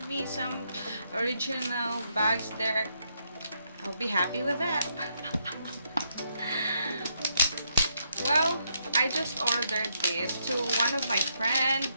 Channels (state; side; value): inverted; both; correlation -0.77